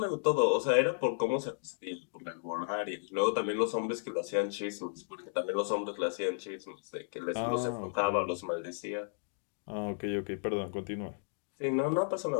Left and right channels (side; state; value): right; silent; digital silence